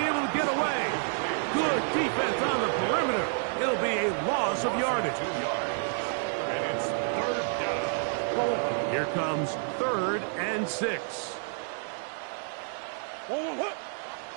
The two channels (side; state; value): left; silent; 58 dB below the other